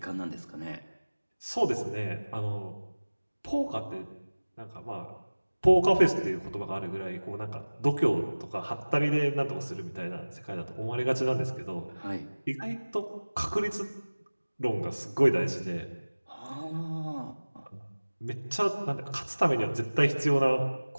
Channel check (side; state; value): both; inverted; correlation -1.00